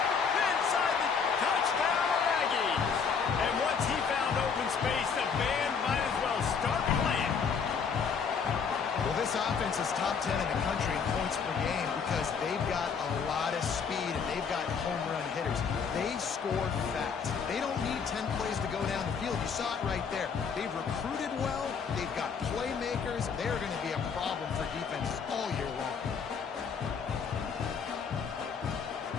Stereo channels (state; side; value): quieter; right; 6.1 dB